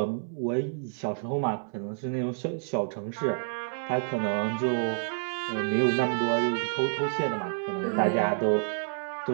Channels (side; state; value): left; silent; 58 dB below the other